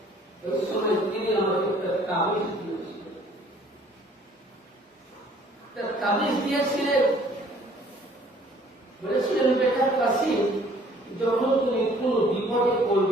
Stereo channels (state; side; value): normal; both; correlation 0.57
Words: ওই সময় তিনি আমাকে একটা তাবিজ দিয়েছিলেন। তাবিজ দিয়েছিলেন, বলেছিলেন, বেটা কাসিম, যখন তুমি কোন বিপদে